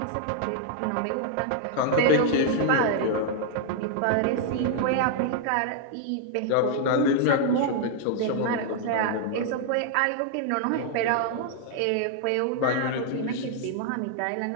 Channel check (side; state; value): both; different; correlation 0.00